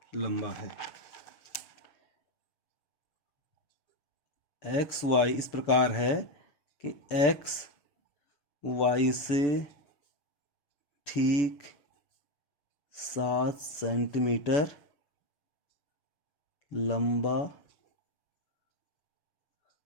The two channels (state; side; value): late; right; 7.0 ms